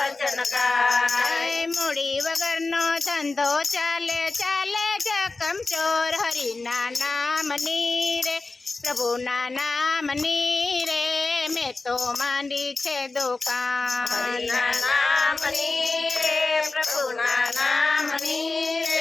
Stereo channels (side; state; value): right; quieter; 3.6 dB